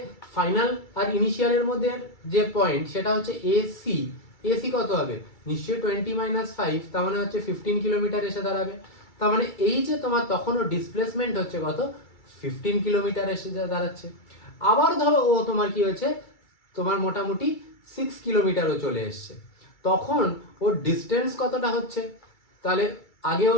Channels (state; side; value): late; right; 2.3 ms